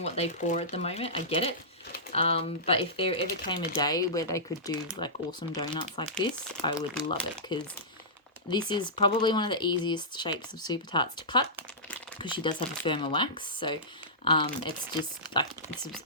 what they pour at the moment. I get it. But if there ever came a day where they could do like awesome donuts like this, I would love it, because this is probably one of the easiest shapes of Super Tarts to cut, because she does have a firmer wax. So it's just like, it's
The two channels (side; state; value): both; normal; correlation -0.17